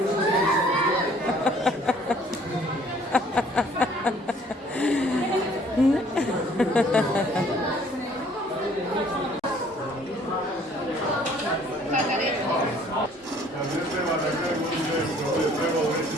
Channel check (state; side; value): normal; both; correlation 0.58